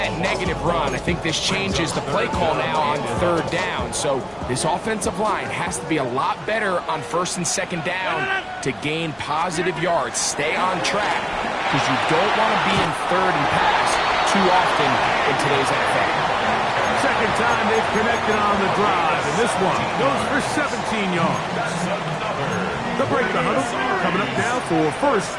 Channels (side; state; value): both; identical; correlation 1.00